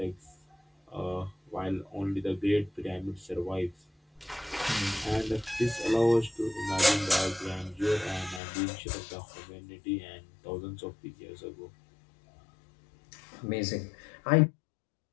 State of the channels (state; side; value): drops out; right; at 8.4 s